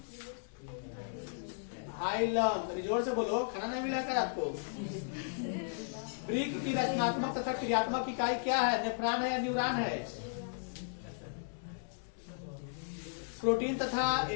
हाइलम। जोर से बोलो, खाना नहीं मिला क्या आपको? वृक्क की रचनात्मक तथा क्रियात्मक इकाई क्या है? नेफ्रॉन है या न्यूरॉन है? प्रोटीन तथा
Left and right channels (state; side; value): silent; right; digital silence